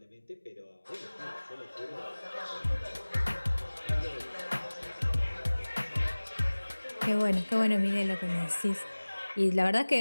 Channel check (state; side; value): inverted; both; correlation -1.00